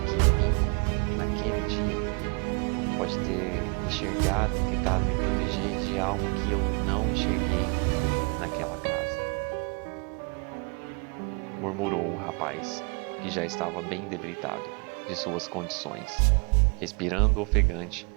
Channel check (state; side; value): quieter; left; 34.4 dB